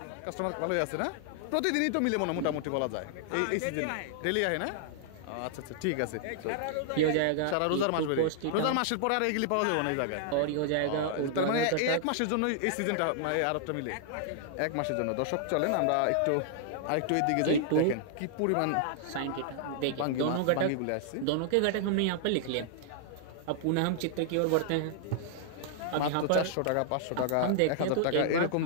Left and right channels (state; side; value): different; both; correlation -0.01